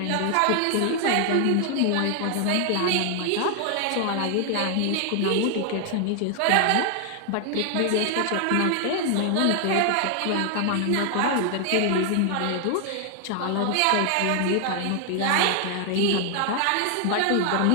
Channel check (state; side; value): different; both; correlation 0.00